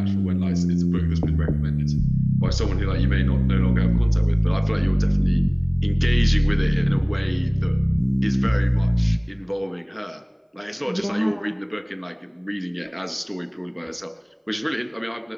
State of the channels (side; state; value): both; identical; correlation 1.00